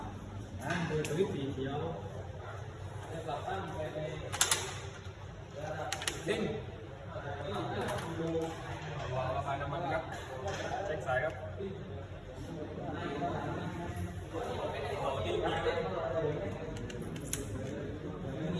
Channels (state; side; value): identical; both; correlation 1.00